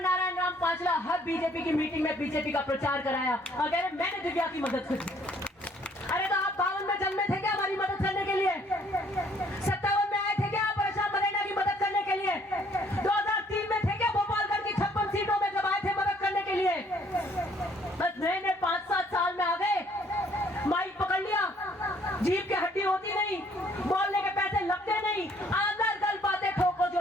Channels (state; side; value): normal; both; correlation 0.63